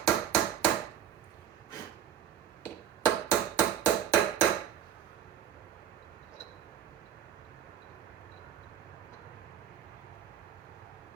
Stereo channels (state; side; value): quieter; left; 9.7 dB